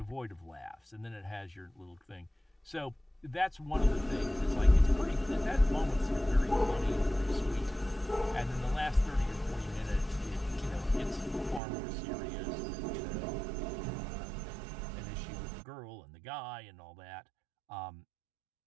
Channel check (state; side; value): drops out; left; at 11.6 s